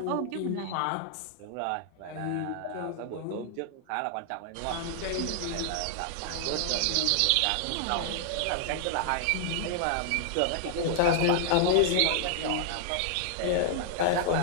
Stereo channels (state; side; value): different; both; correlation -0.01